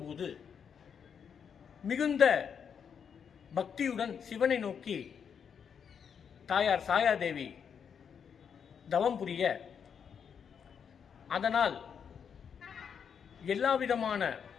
போது மிகுந்த பக்தியுடன் சிவனை நோக்கி தாயார் சாயாதேவி தவம் புரிய, அதனால் எல்லாவிதமான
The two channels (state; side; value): quieter; right; 7.2 dB